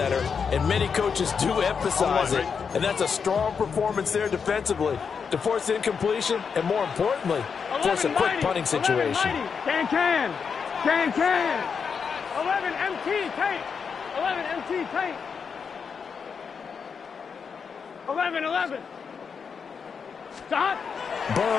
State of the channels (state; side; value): quieter; right; 6.1 dB